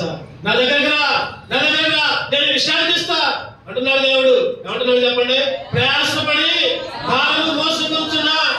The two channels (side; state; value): both; identical; correlation 1.00